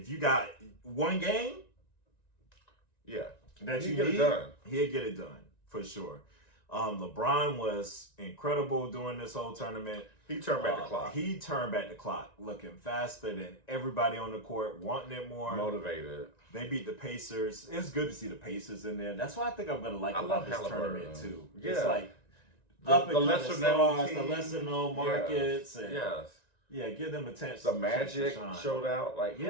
you got one game, yeah, that he'll you get need, it done. He'll get it done for sure. LeBron was incredible during this whole tournament. He turned back the clock. He turned back the clock, looking faster than everybody on the court, wanting it more. Motivated. They beat the Pacers. It's good to see the Pacers in there. That's why I think I'm going to like about this tournament too. Yeah. It's like the lesser known the lesser known markets. Yes. And yes. Yeah, give them a chance. The Magic showed out. Like,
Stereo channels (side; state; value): right; late; 1.9 ms